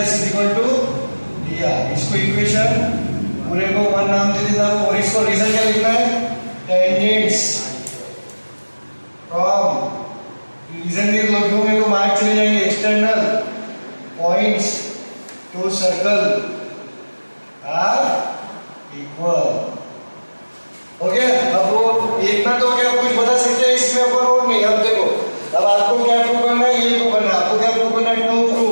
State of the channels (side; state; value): both; inverted; correlation -1.00